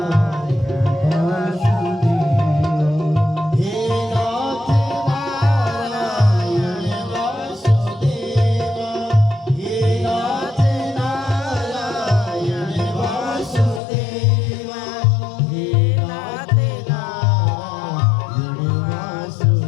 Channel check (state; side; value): drops out; right; at 13.8 s